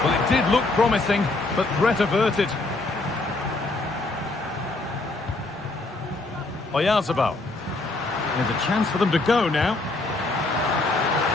Well, it did look promising, but threat averted. Oyarzabal. There's a chance for them to go now.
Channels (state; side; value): quieter; right; 3.1 dB